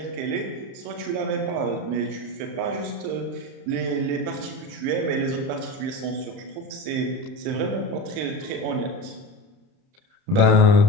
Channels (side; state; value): left; late; 30 ms